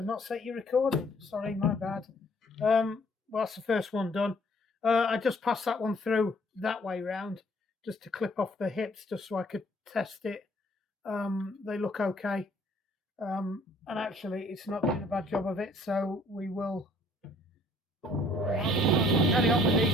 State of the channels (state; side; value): normal; both; correlation 0.60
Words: not set your recording. Sorry, my bad. Well, that's the first one done. I just passed that one through that way round, just to clip off the hips, just so I could test it. They look okay. And actually, it's not doing a bad job of it, so we will carry on with these,